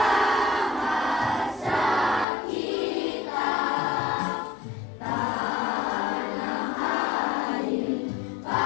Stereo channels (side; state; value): right; drops out; at 2.2 s